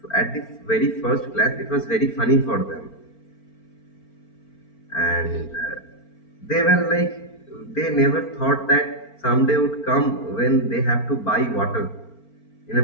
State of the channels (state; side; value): late; right; 4.4 ms